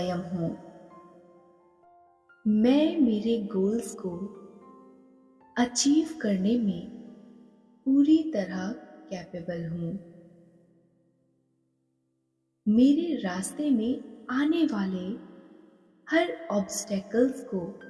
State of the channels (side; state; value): both; identical; correlation 1.00